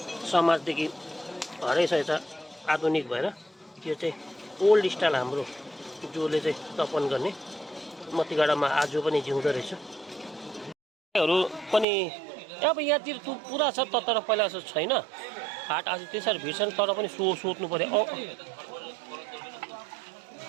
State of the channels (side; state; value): left; drops out; at 11.9 s